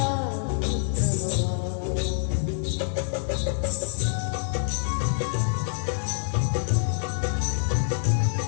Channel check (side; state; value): right; silent; digital silence